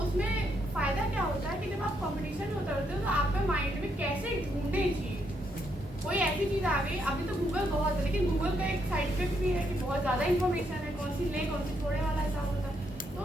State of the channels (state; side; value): normal; both; correlation 0.76